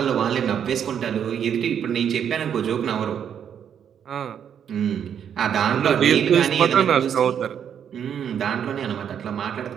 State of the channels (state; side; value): quieter; left; 8.5 dB